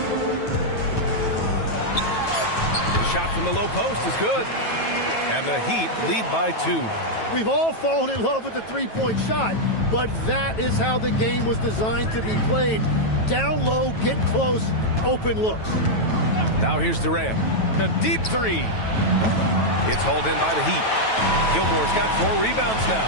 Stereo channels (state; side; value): late; right; 9.2 ms